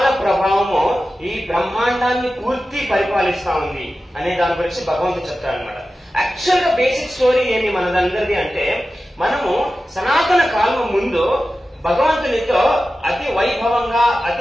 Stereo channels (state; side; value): normal; both; correlation 0.94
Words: ప్రభావము ఈ బ్రహ్మాండాన్ని పూర్తి పరిపాలిస్తా ఉంది అనే దాని గురించి భగవంతుడు చెప్తాడు అనమాట. యాక్చువల్ గా బేసిక్ స్టోరీ ఏమి మనదందరిది అంటే, మనము సనాతన కాలం ముందు భగవంతునితో అతి వైభవంగా